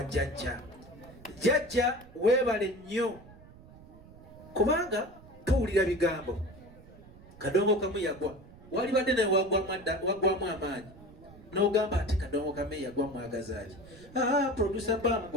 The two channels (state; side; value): noise; right; rumble, 21 dB below the sound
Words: jjajja jjajja weebale nnyo kubanga tuwulira bigambo kadongo kamu yagwa wali badde naye wagwamu amaanyi n'ogamba ate kadongo kamu yagwa mwagazaaki producer